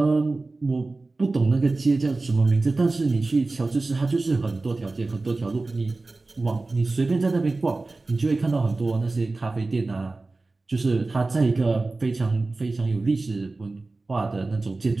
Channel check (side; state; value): left; quieter; 3.4 dB